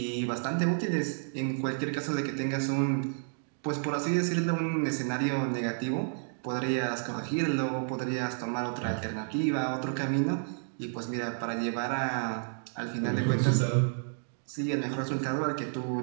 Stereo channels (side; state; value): left; silent; digital silence